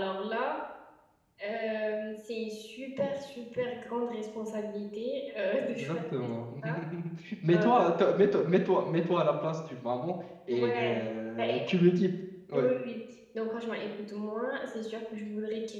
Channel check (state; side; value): identical; both; correlation 1.00